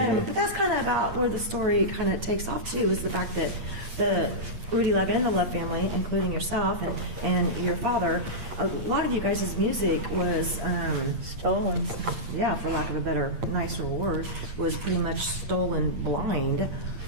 that's kind of about where the story kind of takes off too, is the fact that the Rudy Love and the Love family, including yourself and your father, a lot of you guys' music was stolen. Yeah, for lack of a better, nicer word, was pretty much stolen blind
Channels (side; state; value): left; late; 8.6 ms